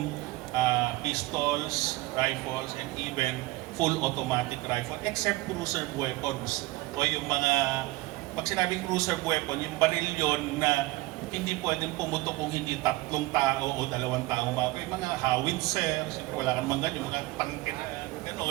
pistols, rifles, and even full automatic rifle, except cruiser weapons. O yung mga, pag sinabing cruiser weapon, yung baril yon na hindi pwedeng pumutok kung hindi 3 tao o 2 tao mapa. Yung mga howitzer, wala kang mga yung mga tangke na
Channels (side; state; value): left; quieter; 20.6 dB